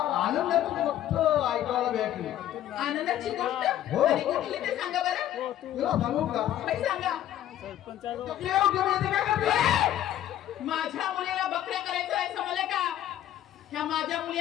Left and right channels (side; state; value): right; quieter; 12.1 dB